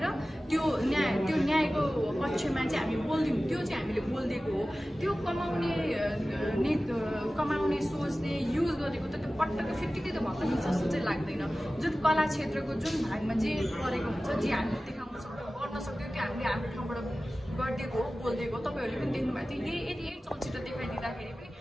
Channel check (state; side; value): normal; both; correlation 0.96